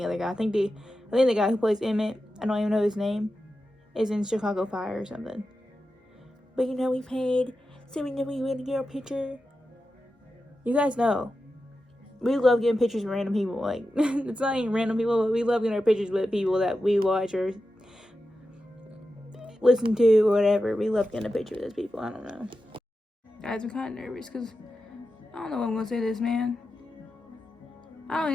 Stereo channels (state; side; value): normal; both; correlation 0.91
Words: other guy. I think the guy who plays Emmett, I don't even know his name, is in Chicago Fire or something. But you know, we paid, so we know we went to get our picture. You guys know, we love getting pictures with random people. Like, it's not even random people, but we love getting our pictures with people that we watch or listen to or whatever. We love getting a picture with those people. I don't know. Guys, I'm kind of nervous because I don't know what I'm going to say to this man. I don't